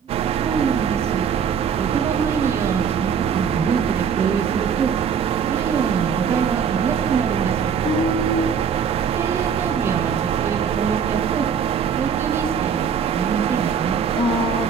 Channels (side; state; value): left; quieter; 7.0 dB